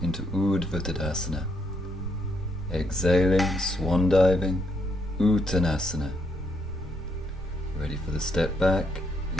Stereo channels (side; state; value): both; normal; correlation 0.75